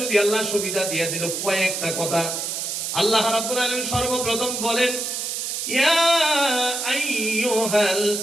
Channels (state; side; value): noise; right; hiss, 3 dB below the sound